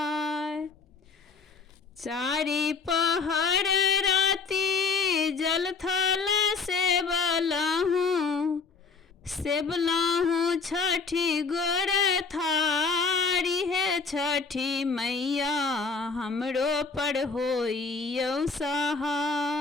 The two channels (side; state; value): right; quieter; 4.7 dB